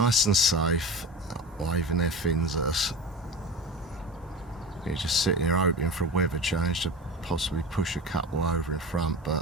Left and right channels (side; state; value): both; normal; correlation 0.29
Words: and safe, waving their fins at us. You're just sitting here hoping for a weather change to possibly push a couple over in front,